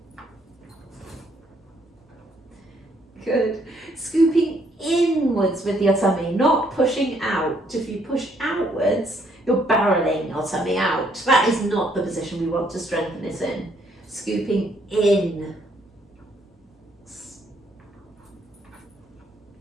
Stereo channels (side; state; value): both; normal; correlation 0.69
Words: Good. Scooping inwards with your tummy, not pushing out. If you push outwards, you're barreling your tummy out. That is not the position we want to strengthen it in. Scooping in.